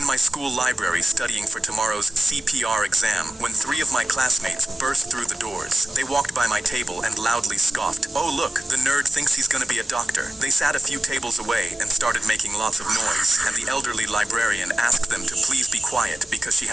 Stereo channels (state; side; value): normal; both; correlation 0.95